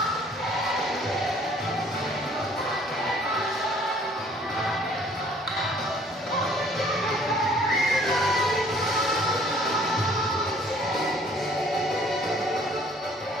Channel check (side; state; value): both; normal; correlation 0.57